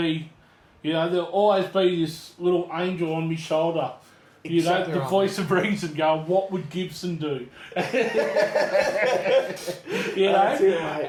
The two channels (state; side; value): identical; both; correlation 1.00